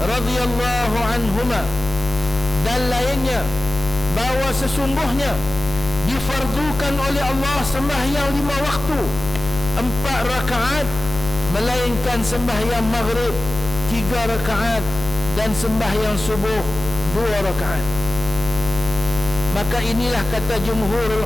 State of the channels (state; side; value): noise; left; hum, 11 dB below the sound